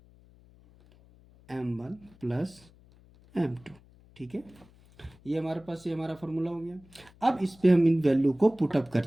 m1 प्लस m2। ठीक है, ये हमारे पास ये हमारा फॉर्मूला हो गया। अब इस पे हम इन वैल्यू को पुटअप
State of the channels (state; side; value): noise; left; hum, 27 dB below the sound